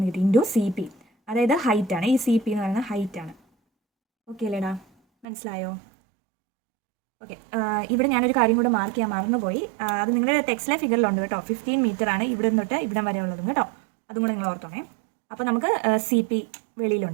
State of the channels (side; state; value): left; drops out; at 5.2 s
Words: കിട്ടി ഇൻറ്റു CP, അതായത് ഹൈറ്റ് ആണ്. ഈ CP എന്ന് പറയുന്നത് ഹൈറ്റ് ആണ്. ഓക്കെ അല്ലേടാ, മനസ്സിലായോ? ഓക്കെ, ഇവിടെ ഞാനൊരു കാര്യം കൂടെ മാർക്ക് ചെയ്യാൻ മറന്നുപോയി. അത് നിങ്ങളുടെ ടെക്സ്റ്റിലെ ഫിഗറിലുണ്ട് കേട്ടോ. 15 മീറ്റർ ആണ് ഇവിടെ തൊട്ട് ഇവിടം വരെ ഉള്ളതും കേട്ടോ. അതും കൂടെ നിങ്ങൾ ഓർത്തോണേ. അപ്പോൾ നമുക്ക് CP